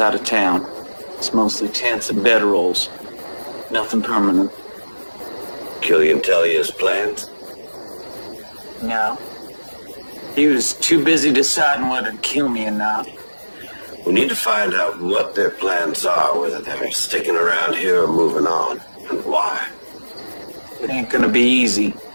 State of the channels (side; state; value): both; inverted; correlation -1.00